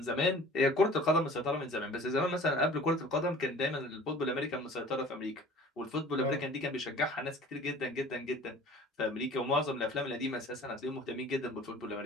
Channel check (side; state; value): both; normal; correlation 0.46